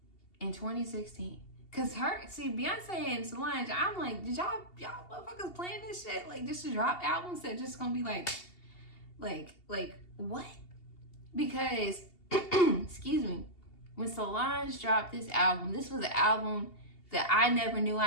in 2016. Cause Beyonce and Solange, I'm like, did y'all motherfuckers playing this shit? Like just to drop albums that just gonna be like what? Because, excuse me, when Solange dropped this album, this was an album that I never knew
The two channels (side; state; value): right; late; 2.8 ms